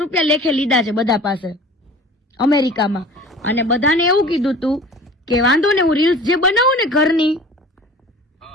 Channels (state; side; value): normal; both; correlation 0.43